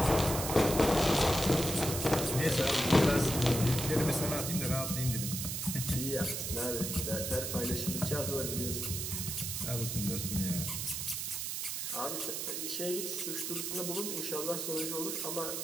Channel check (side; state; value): right; noise; hiss, 3 dB below the sound